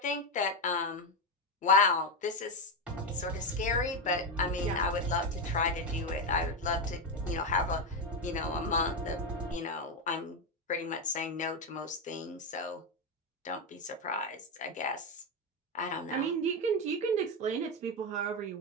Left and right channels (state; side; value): normal; both; correlation 0.09